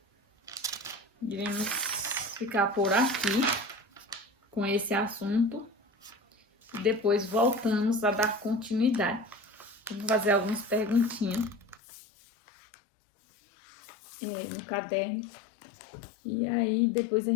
iremos ficar por aqui com esse assunto e depois voltamos a dar continuidade. Vou fazer algumas perguntinhas. no caderno. E aí, depois a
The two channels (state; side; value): drops out; right; at 11.8 s